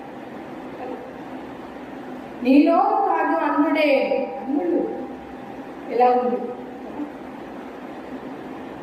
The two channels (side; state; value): both; identical; correlation 1.00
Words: నీలో కాదు అన్నుడే, అన్నుడు ఎలా ఉంది,